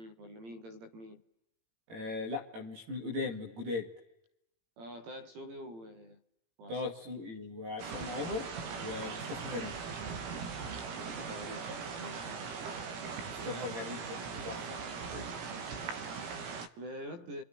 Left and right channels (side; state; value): left; late; 18 ms